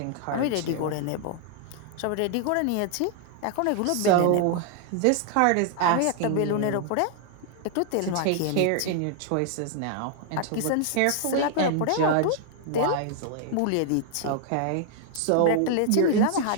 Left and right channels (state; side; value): different; both; correlation 0.00